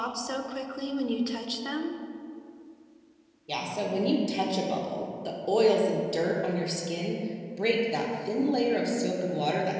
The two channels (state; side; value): identical; both; correlation 1.00